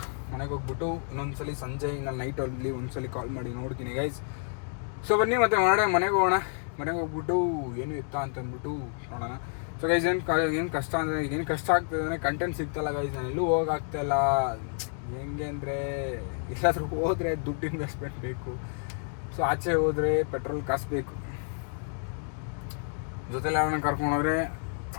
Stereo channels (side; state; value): right; silent; 55 dB below the other